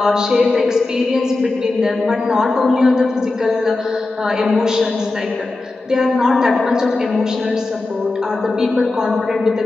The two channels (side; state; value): right; quieter; 3.2 dB